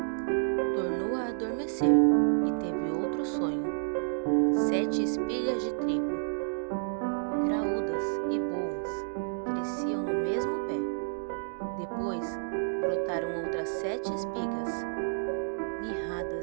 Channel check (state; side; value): silent; left; digital silence